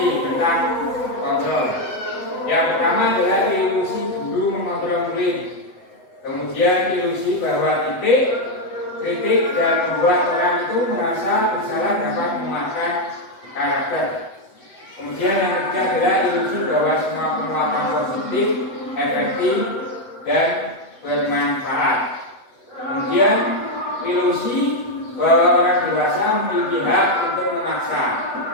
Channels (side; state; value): right; late; 8.0 ms